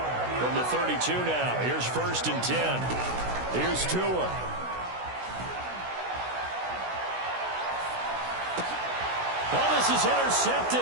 From the 32 now, here's 1st and 10. Here's Tua. Oh, this is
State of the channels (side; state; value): left; late; 16 ms